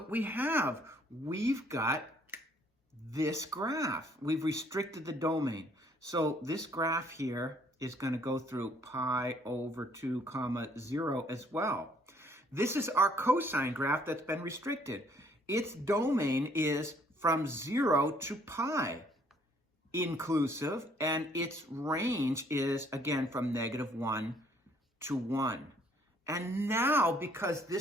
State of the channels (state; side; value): normal; both; correlation 0.63